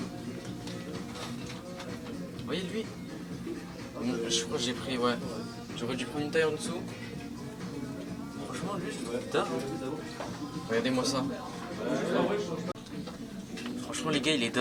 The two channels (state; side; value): identical; both; correlation 1.00